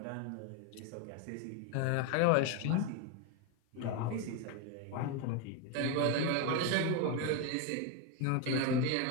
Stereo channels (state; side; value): different; both; correlation 0.02